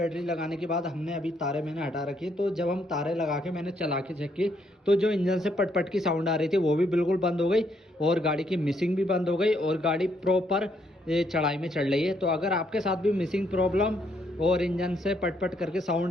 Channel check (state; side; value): normal; both; correlation 0.73